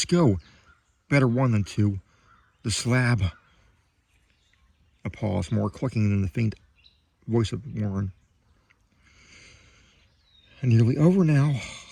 go. Better one than two. The slab. A pause, more clicking than the faint voice of Warren. Nearly over now.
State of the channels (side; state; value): both; identical; correlation 1.00